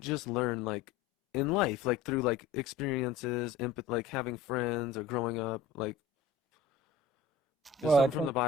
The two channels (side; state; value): right; quieter; 4.7 dB